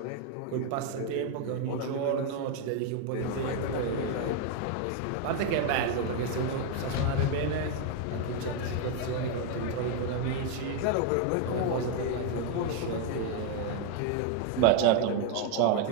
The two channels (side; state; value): both; different; correlation 0.01